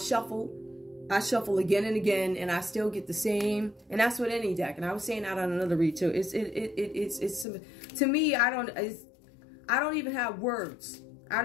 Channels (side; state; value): right; drops out; at 7.5 s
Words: I shuffle again and again, and I still get the same. And that's with any deck. And I was saying that on another read too. It's to me, I don't even have words. I